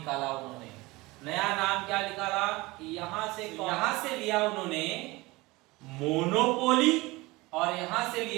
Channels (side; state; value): left; quieter; 22.0 dB